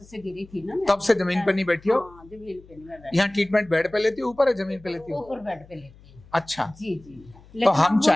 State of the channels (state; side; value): noise; left; hum, 24 dB below the sound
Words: से गिरी थी ना मैं, तब से जमीन पे नहीं बैठी हो? हाँ जमीन पे नहीं मैं बैठ, यहाँ ट्रीटमेंट बेड पे लेती हो ऊपर है जमीन पे लेती हो? ऊपर बेड पे लेती हूँ। अच्छा जी जी। तो हम अब वो जो